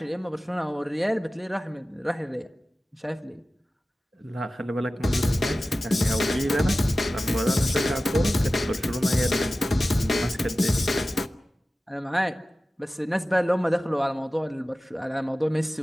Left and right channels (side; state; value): both; normal; correlation 0.96